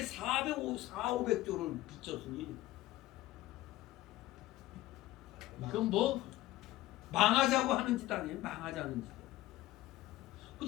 빚졌으니 그건 뭐 망하자고 하는 짓 아니에요. 망하자는 짓.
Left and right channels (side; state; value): right; quieter; 16.5 dB